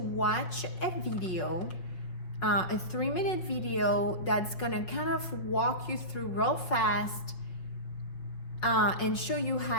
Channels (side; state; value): right; late; 5.5 ms